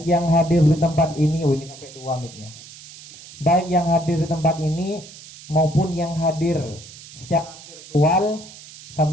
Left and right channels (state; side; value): noise; right; hiss, 18 dB below the sound